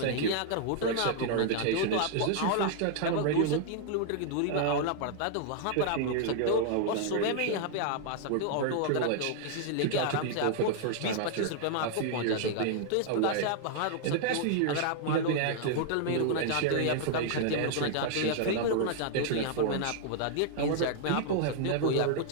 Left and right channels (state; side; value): different; both; correlation 0.00